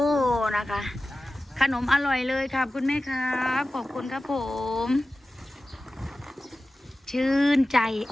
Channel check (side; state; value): both; normal; correlation 0.96